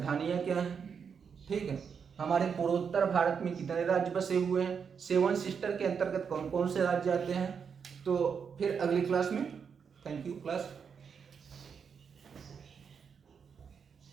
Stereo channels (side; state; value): left; quieter; 6.6 dB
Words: क्या हैं। ठीक है, हमारे पूर्वोत्तर भारत में कितने राज्य बसे हुए हैं, 7 सिस्टर के अंतर्गत कौन कौन से राज्य आते हैं। तो फिर अगली क्लास में, थैंक यू क्लास।